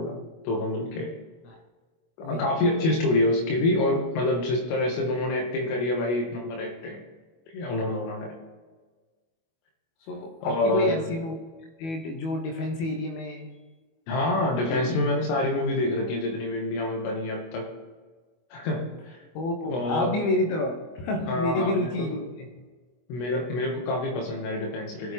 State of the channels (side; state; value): right; late; 25 ms